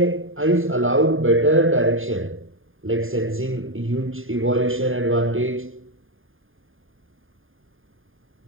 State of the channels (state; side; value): late; left; 0.59 ms